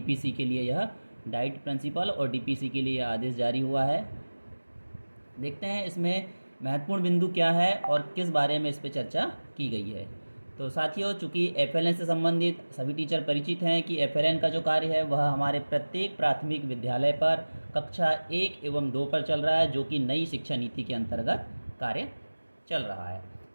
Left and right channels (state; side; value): inverted; both; correlation -1.00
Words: के लिए यह डाइट प्रिंसिपल और डीपीसी के लिए यह आदेश जारी हुआ है। देखते हैं इसमें महत्वपूर्ण बिंदु क्या है और किस बारे में इस पर चर्चा की गई है। तो साथियों, चूँकि एफएलएन से संबंधित सभी टीचर परिचित हैं कि एफएलएन का जो कार्य है वह हमारे प्रत्येक प्राथमिक विद्यालय पर कक्षा 1 एवं 2 पर चल रहा है, जो कि नई शिक्षा नीति के अंतर्गत कार्य चल रहा है।